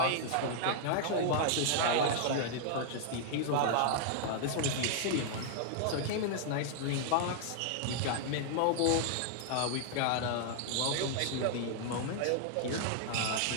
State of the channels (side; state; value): both; different; correlation -0.01